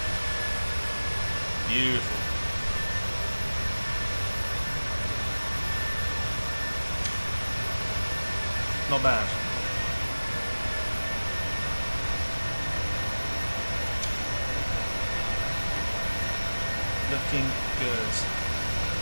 Beautiful. Not bad. Looking good.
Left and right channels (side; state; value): both; inverted; correlation -1.00